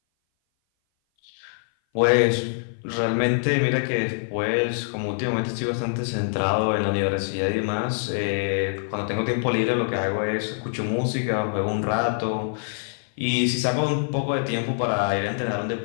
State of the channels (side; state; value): right; silent; 58 dB below the other